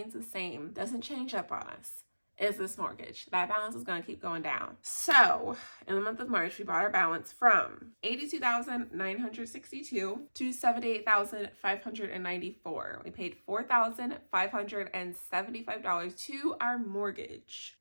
the same, doesn't change up on us, is this mortgage. That balance is going to keep going down. So in the month of March, we brought our balance from $82,962 to $78,594. We paid $4,575 to our mortgage.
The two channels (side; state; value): both; inverted; correlation -1.00